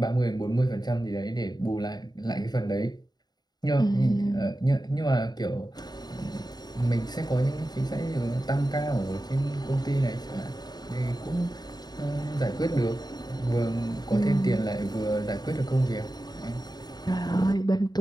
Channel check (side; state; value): right; late; 0.20 ms